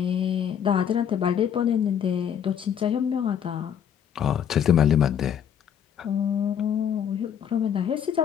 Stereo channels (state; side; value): quieter; right; 8.7 dB